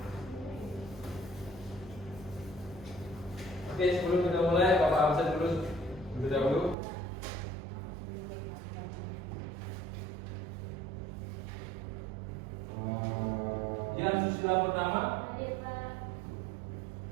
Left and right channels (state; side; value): drops out; left; at 6.8 s